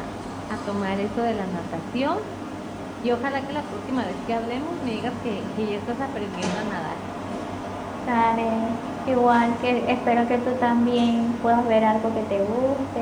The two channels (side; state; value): both; identical; correlation 1.00